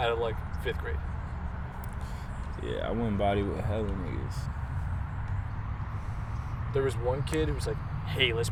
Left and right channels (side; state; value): both; identical; correlation 1.00